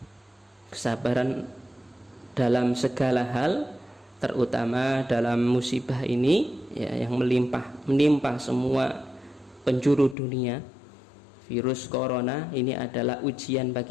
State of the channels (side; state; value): right; drops out; at 10.2 s